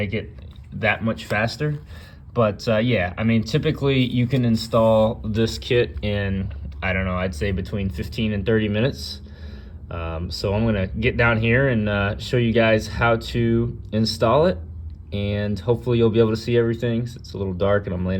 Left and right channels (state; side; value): identical; both; correlation 1.00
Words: it that much faster. But yeah, I mean, typically you can install this kit in, I don't know, I'd say between 15 and 30 minutes. So I'm gonna get down here and show you guys how to install it, and hopefully you'll be able to see everything. It's a little dark and I'm